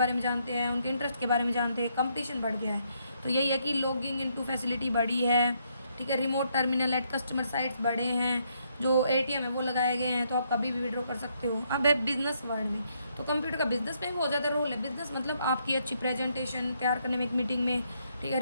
में जानते हैं, उनके इंटरेस्ट के बारे में जानते हैं, कंपटीशन बढ़ गया है। तो यही है कि लॉगिंग इनटू फैसिलिटी बढ़ी है, ठीक है। Remote terminal at customer sites बढ़े हैं, जो एटीएम है वो लगाए गए हैं, तो आप कभी भी विड्रॉ कर सकते हो। अब है बिजनेस वर्ल्ड में, तो कंप्यूटर का बिजनेस में बहुत ज़्यादा रोल है। बिजनेस मतलब आपकी अच्छी प्रेजेंटेशन तैयार करने में, एक मीटिंग में, ठीक है,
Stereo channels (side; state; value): both; inverted; correlation -0.73